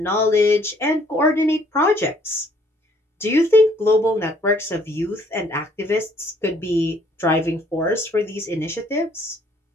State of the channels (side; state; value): both; normal; correlation 0.62